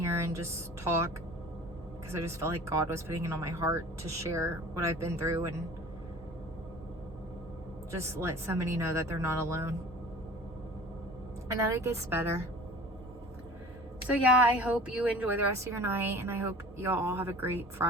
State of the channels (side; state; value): both; normal; correlation 0.43